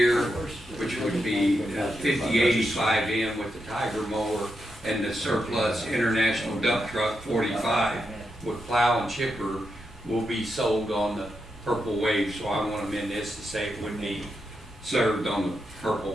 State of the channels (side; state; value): both; normal; correlation 0.85